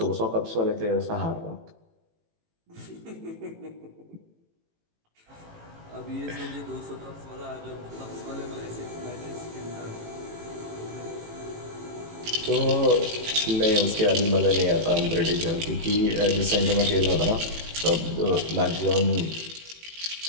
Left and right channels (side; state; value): left; late; 18 ms